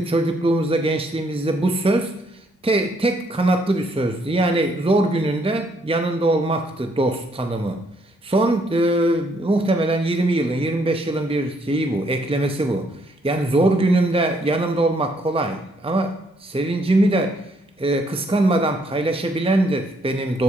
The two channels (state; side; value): normal; both; correlation 0.70